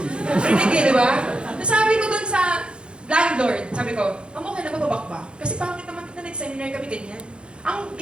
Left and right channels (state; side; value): late; left; 0.055 ms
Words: Rinig eh, di ba? Nasabi ko dun sa landlord, sabi ko, okay na bababak ba? Kasi pangit naman kita nag-seminar kami ganyan. Ang